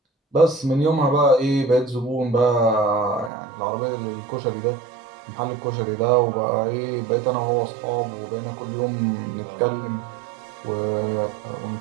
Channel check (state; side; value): drops out; left; at 3.3 s